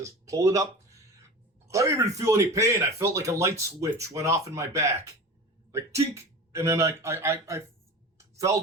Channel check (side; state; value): both; normal; correlation 0.33